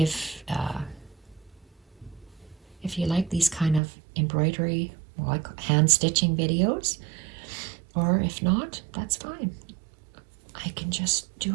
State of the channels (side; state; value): left; drops out; at 3.8 s